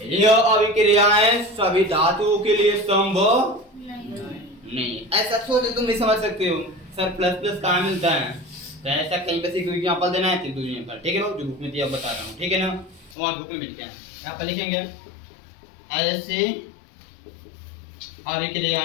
यह अभिक्रियाएं सभी धातुओं के लिए संभव नहीं। ऐसा सोच तुम नहीं समझ सकते हो, सर प्लस प्लस कहाँ मिलता है, तो ऐसा कहीं पे से कोई एग्जांपल देना है, तो एग्जांपल, ठीक है बाबू, जो बुक में दिया बता रहा हूँ, ठीक है ना, वहाँ बुक में मिलते हैं, यहाँ पर लिखेंगे ऐसे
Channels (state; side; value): drops out; right; at 13.2 s